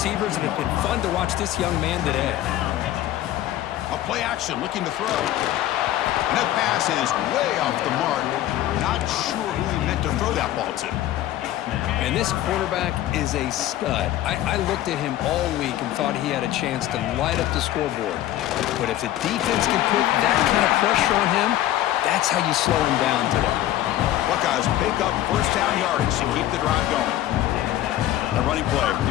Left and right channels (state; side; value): quieter; right; 13.6 dB